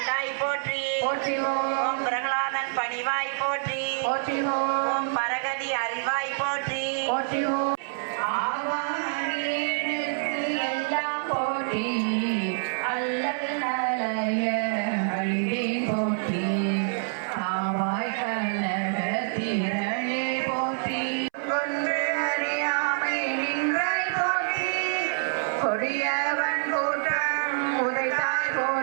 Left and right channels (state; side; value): silent; left; 60 dB below the other